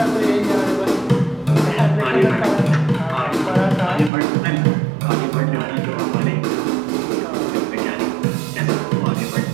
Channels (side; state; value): left; drops out; at 4.1 s